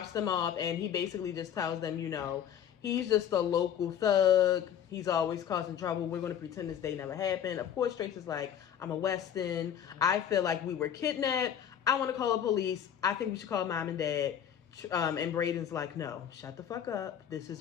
them off, and he basically just tells them, you know, he's just a local thug. He's always causing trouble. We're going to pretend this day never happened. Of course, Trace is like, I'm a Weston. I feel like we were kidnapped. I want to call the police. I think we should call mom and dad. And Braden's like, no, shut the fuck up. This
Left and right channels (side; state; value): right; quieter; 9.2 dB